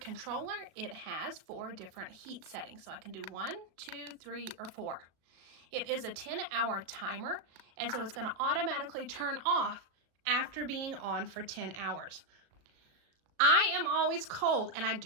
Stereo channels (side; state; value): left; late; 37 ms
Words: it has 4 different heat settings. So I can do 1, 2, 3, or 4. It is a 10-hour timer, and so it's going to automatically turn off after being on for 10 hours. I am always cold, and I